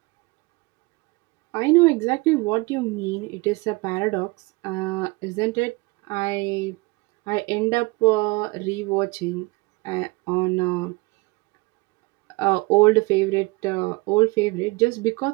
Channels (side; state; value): left; quieter; 25.5 dB